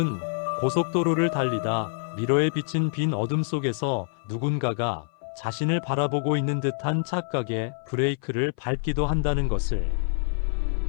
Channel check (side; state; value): right; silent; 58 dB below the other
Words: 고속도로를 달리다 미러에 비친 빈 어둠 속에서 누군가가 자신을 바라보고 있는 듯한 착각에 브레이크를 밟기도 한다는 것을.